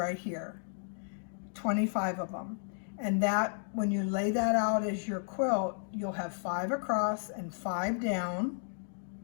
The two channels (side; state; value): right; silent; digital silence